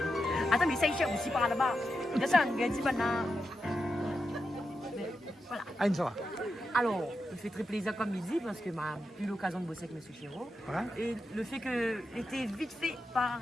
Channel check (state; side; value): normal; both; correlation 0.87